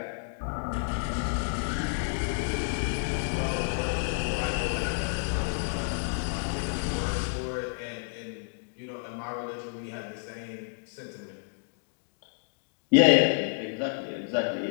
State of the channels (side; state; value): right; silent; digital silence